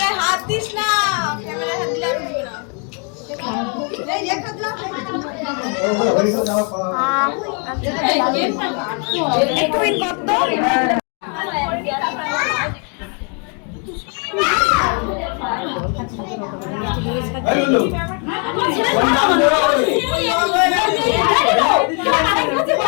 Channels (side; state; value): right; quieter; 38.3 dB